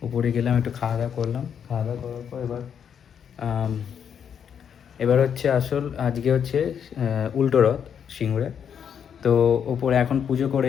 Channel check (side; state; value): right; quieter; 8.0 dB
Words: উপরে গেলাম, একটু খাওয়া দাওয়া করলাম। খাওয়া দাওয়া করার পর এবার হচ্ছে আসল, আজকে হচ্ছে উল্টো রথ সিঙ্গুরে। তো ওপরে এখন পুজো করে